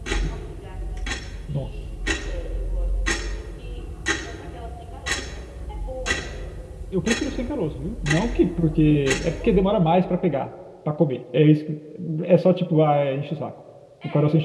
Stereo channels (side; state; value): both; identical; correlation 1.00